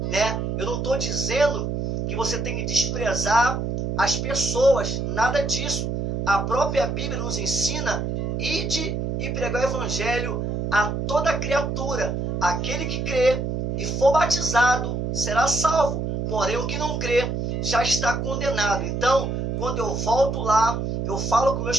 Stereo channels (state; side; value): noise; right; hum, 2 dB below the sound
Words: né? Eu não estou dizendo que você tem que desprezar as pessoas, nada disso. A própria Bíblia nos ensina: ide e pregar o evangelho a toda criatura. Aquele que crê e for batizado será salvo, porém o que não crê já está condenado. Então, quando eu volto lá, eu falo com